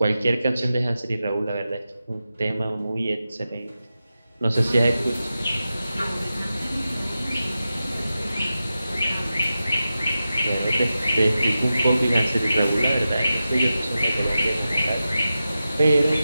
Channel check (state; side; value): inverted; both; correlation -0.92